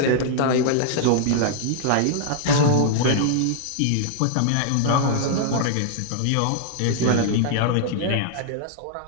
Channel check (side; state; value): both; different; correlation -0.01